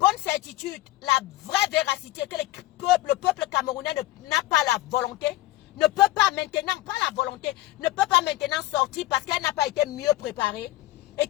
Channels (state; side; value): quieter; right; 17.1 dB